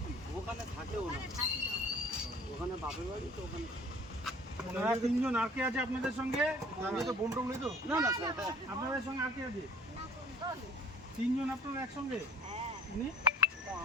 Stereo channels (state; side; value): normal; both; correlation 0.50